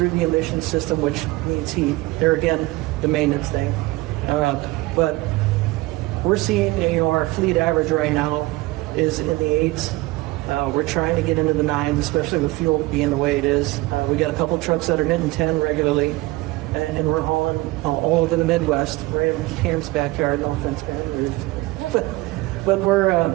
the emission system, which needs heat. There again, the maintenance thing. But we're seeing, our fleet average right now is in the 8s. We're trying to get into the 9s, especially with fuel being the way it is. We got a couple trucks that are hitting 10 regularly, and we're hauling all over the Midwest, right in Cam's backyard. No offense, Cam. But we're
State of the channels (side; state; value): left; quieter; 20.6 dB